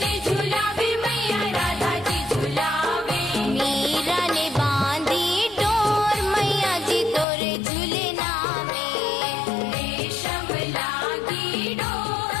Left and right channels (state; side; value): drops out; right; at 7.2 s